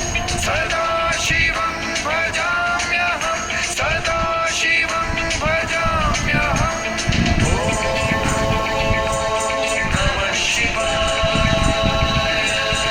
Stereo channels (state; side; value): identical; both; correlation 1.00